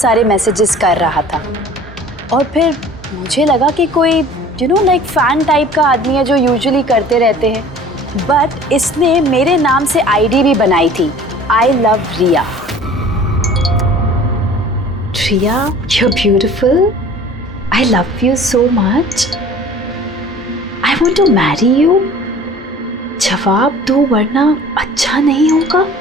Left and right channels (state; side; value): normal; both; correlation 0.46